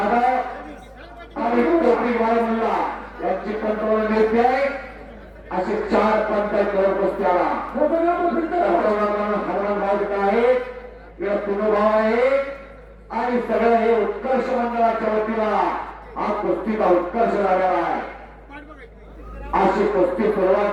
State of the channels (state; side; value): identical; both; correlation 1.00